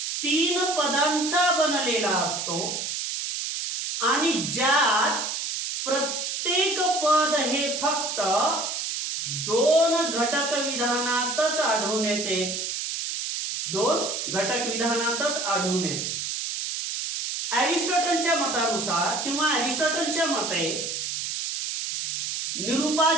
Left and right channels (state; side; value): noise; right; hiss, 3 dB below the sound